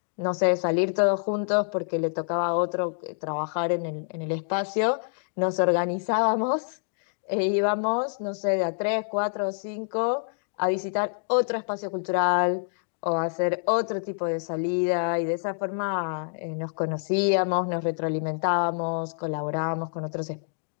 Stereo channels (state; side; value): silent; right; digital silence